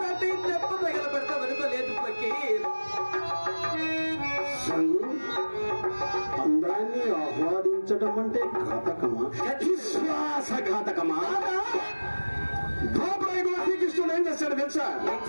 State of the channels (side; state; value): both; inverted; correlation -1.00